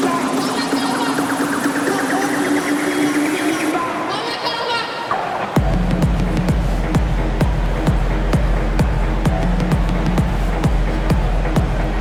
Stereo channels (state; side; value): identical; both; correlation 1.00